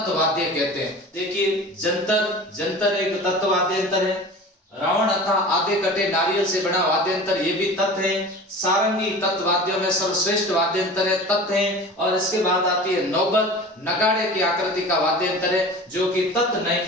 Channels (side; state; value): both; normal; correlation 0.37